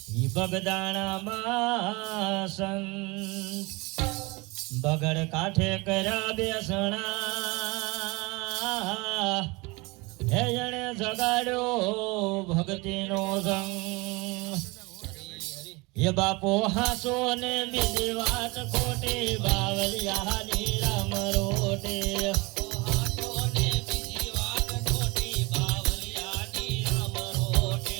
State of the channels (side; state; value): left; quieter; 25.3 dB